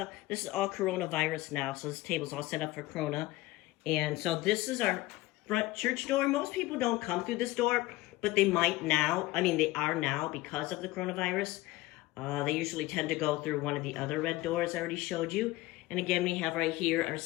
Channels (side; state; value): right; quieter; 18.8 dB